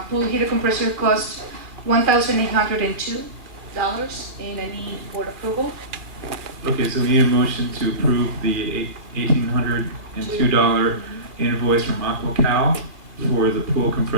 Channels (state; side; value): late; left; 2.3 ms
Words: pool heater compressor costs $1,802, and I need board approval. Okay, so we need a motion to approve the $1,802 invoice from AquaCal for the pool